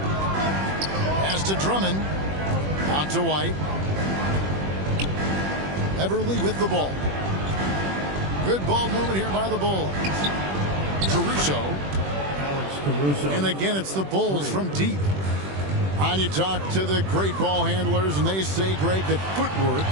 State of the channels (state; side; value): late; left; 21 ms